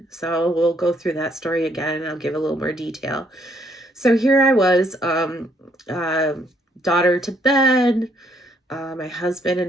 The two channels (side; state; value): both; normal; correlation 0.69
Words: So we'll go through that story again, and I'll give a little more detail. So here I was, uh, daughter to bed. My husband and